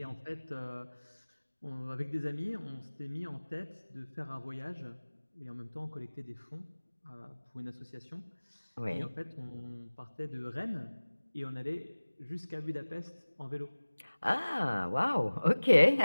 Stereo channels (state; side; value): inverted; both; correlation -1.00